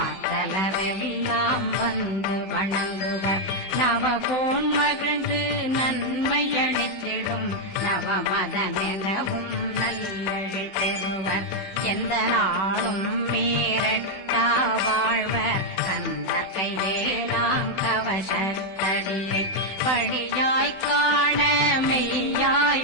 வந்து வணங்குவர் நவகோன் மகிழ்ந்து நன்மையளித்திடும் நவமதனெனவும் நல்லெழில் பெறுவர் எந்த நாளும் மீறட்டா வாழ்வர் கந்தர் கைவேலாம் கவசத்தடியை படியாய் காண மெய்யாய்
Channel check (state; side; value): late; right; 16 ms